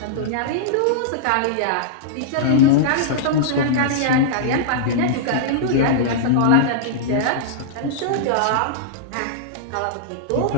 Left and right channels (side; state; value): both; different; correlation -0.02